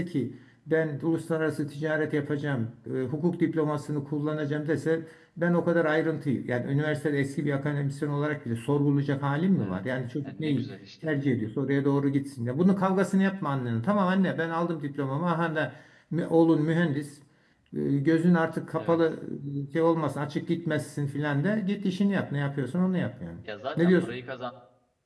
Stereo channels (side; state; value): both; identical; correlation 1.00